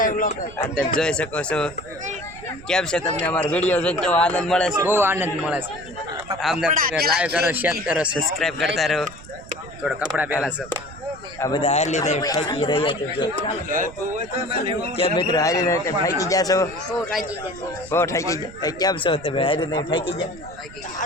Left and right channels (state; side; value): noise; right; rumble, 18 dB below the sound